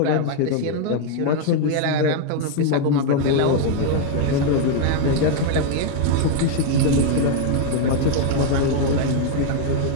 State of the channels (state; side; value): different; both; correlation 0.00